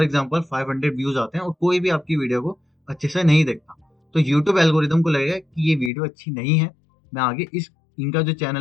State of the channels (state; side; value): drops out; right; at 5.9 s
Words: एग्जांपल 500 व्यूज आते हैं और कोई भी आपकी वीडियो को अच्छे से नहीं देखता, तो यूट्यूब एल्गोरिदम को लगेगा कि ये वीडियो अच्छी नहीं है, मैं आगे इस इनका जो